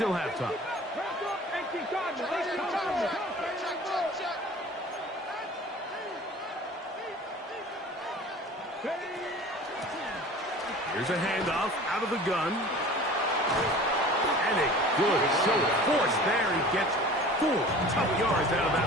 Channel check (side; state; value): both; normal; correlation 0.42